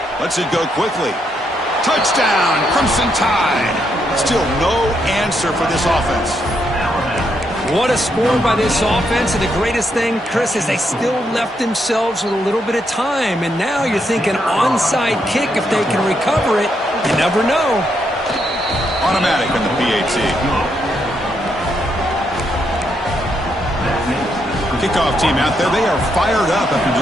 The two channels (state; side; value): normal; both; correlation 0.78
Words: Lets it go quickly. Touchdown, Crimson Tide. Still no answer for this offense. What a score by this offense, and the greatest thing, Chris, is they still left themselves with a little bit of time, and now you're thinking onside kick if they can recover it. You never know. Automatic in the PAT. Kickoff team out there, they are fired up after